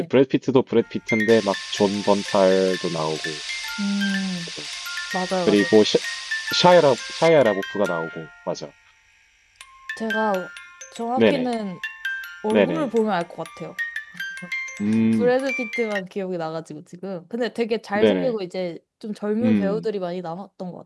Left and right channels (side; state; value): both; identical; correlation 1.00